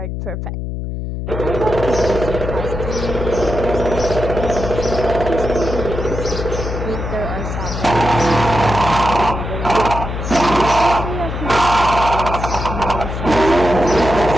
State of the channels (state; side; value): noise; left; hum, 5 dB below the sound